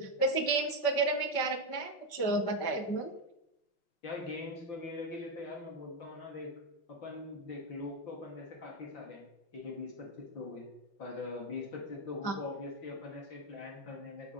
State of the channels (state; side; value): late; right; 5.2 ms